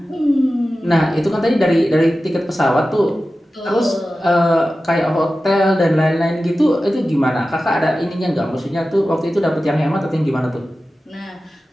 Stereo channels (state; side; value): normal; both; correlation 0.94